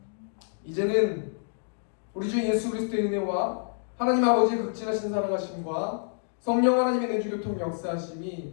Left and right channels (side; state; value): right; silent; digital silence